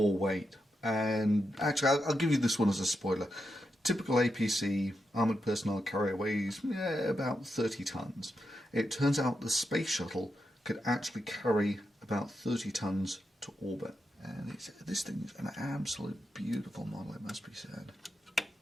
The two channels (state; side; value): normal; both; correlation 0.86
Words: weight? And actually, I'll give you this one as a spoiler. Typical APC armoured personnel carrier weighs about 30 tons. It turns out the space shuttle could actually carry about 30 tons to orbit. And this thing is an absolute beautiful model, it must be said.